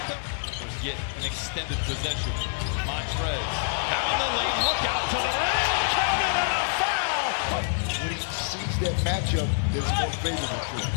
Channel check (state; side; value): silent; right; 60 dB below the other